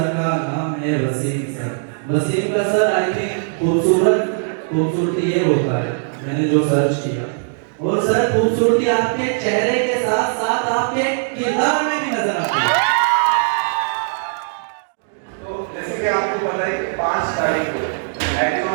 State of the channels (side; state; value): left; silent; digital silence